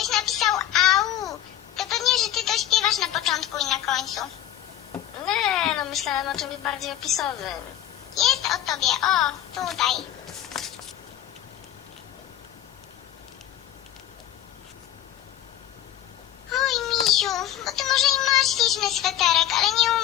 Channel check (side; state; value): right; quieter; 11.8 dB